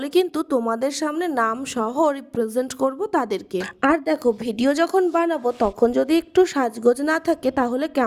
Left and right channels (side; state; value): both; identical; correlation 1.00